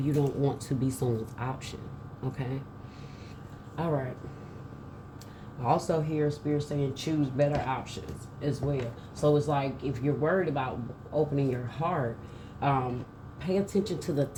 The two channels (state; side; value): identical; both; correlation 1.00